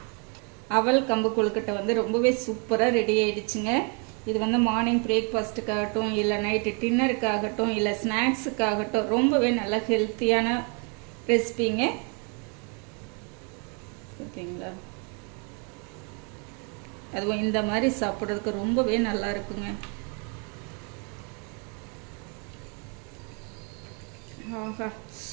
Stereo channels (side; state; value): left; quieter; 36.0 dB